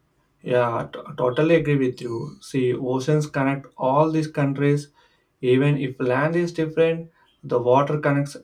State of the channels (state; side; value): identical; both; correlation 1.00